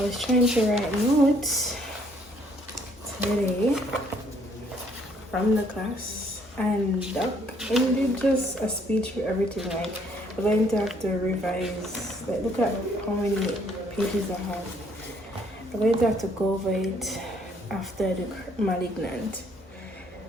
was trying to write notes today from the class. And Doc ended just a speech for everything. Like, we're going to have to revise. Like, look at how many pages I have. I'm going to have to go over it after the malignant.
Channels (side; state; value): both; normal; correlation 0.65